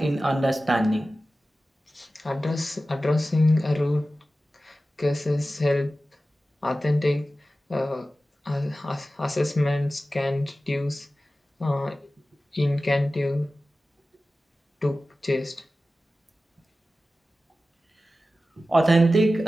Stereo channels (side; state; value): both; normal; correlation 0.95